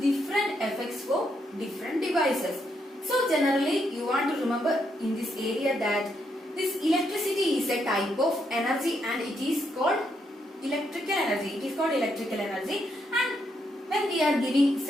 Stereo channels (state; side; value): normal; both; correlation 0.78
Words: effects for different devices. So generally you want to remember in this area that this electricity is a type of energy and it is called electrical energy. It is called electrical energy, and when we are giving